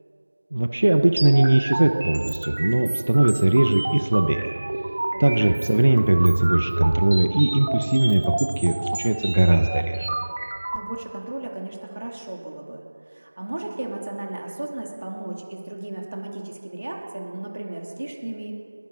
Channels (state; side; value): inverted; both; correlation -1.00